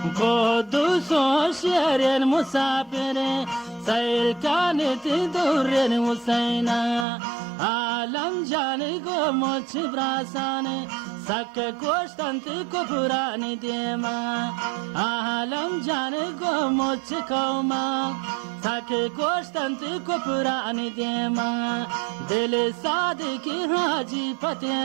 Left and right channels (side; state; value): left; drops out; at 7.1 s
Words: قدوس شير مسافر سيل كانت دور وسينا عالم جاني قومت براساني سك كوشتنت كفراني ديما عالم جاني قومت كوما سك كوشتنت كفراني ديما دل صادق حاجي